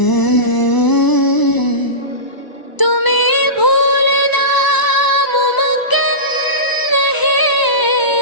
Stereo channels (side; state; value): right; late; 1.0 ms